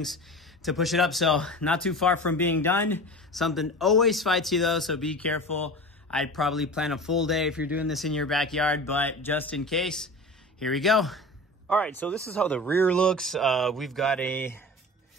to push it up. So not too far from being done. Something always fights you though, so be careful. I'd probably plan a full day if you're doing this in your backyard, but just in case, here we go. All right, so this is how the rear looks. We've got a,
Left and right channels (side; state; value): both; normal; correlation 0.34